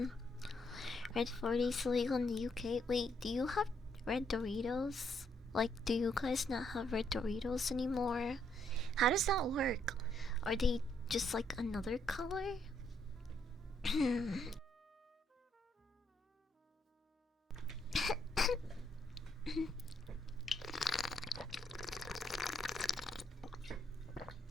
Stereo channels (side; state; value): both; normal; correlation 0.73